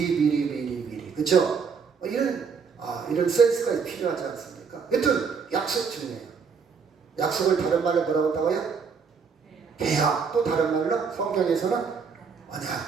그렇죠? 이런 센스가 필요하지 않습니까? 여튼 약속 중요해요. 약속을 다른 말로 뭐라고 한다고요? 계약. 또 다른 말로 성경에서는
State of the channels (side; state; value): left; quieter; 5.8 dB